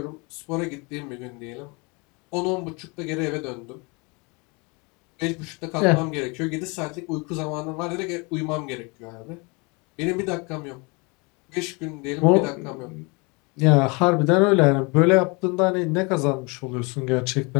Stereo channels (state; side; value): quieter; right; 29.4 dB